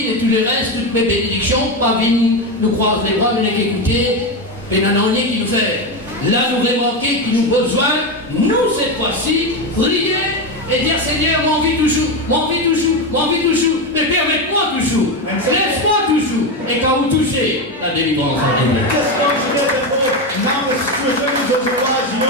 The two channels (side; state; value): both; normal; correlation 0.13